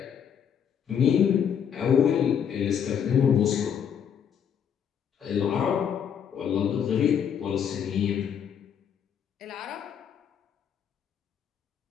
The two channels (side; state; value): right; quieter; 8.1 dB